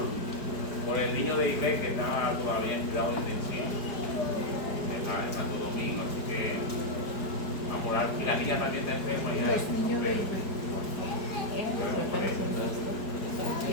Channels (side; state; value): right; late; 4.7 ms